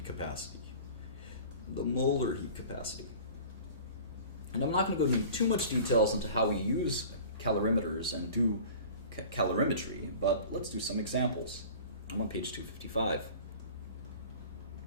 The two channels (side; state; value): both; inverted; correlation -0.42